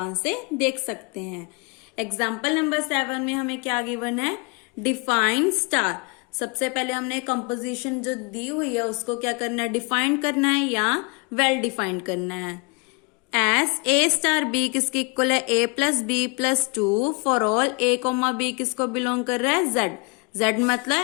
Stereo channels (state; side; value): quieter; right; 32.2 dB